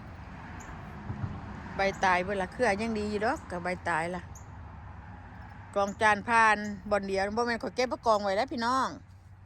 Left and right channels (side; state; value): both; identical; correlation 1.00